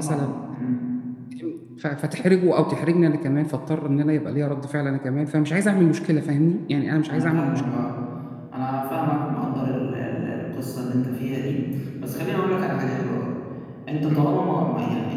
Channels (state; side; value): identical; both; correlation 1.00